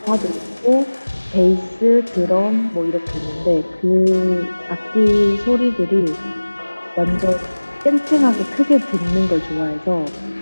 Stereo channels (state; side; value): inverted; both; correlation -1.00